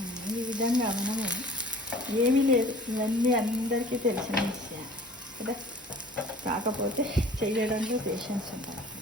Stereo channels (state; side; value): normal; both; correlation 0.47